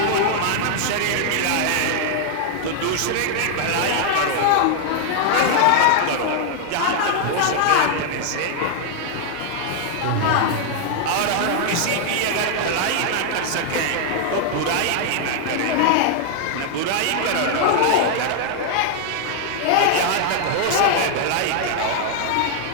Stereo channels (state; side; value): different; both; correlation 0.00